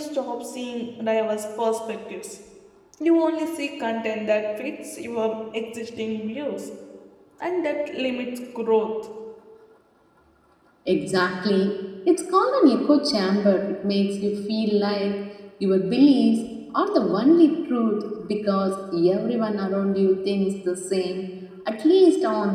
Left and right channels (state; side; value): identical; both; correlation 1.00